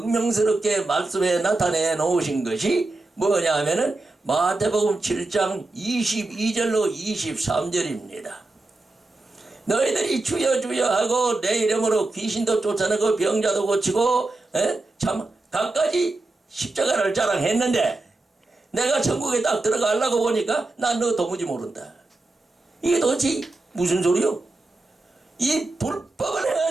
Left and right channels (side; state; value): left; quieter; 3.1 dB